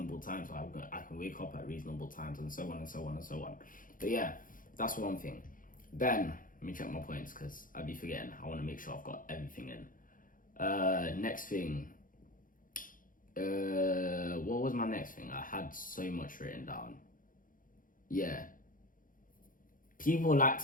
times so I can wake up at reasonable times, and so on and so on and so on. But yeah, that's one thing. Then, let me check my points because I'd be forgetting. I want to make sure I've got everything in. Next thing. What was my next thing? I had so much written down. Yeah. People like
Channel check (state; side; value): late; right; 0.40 ms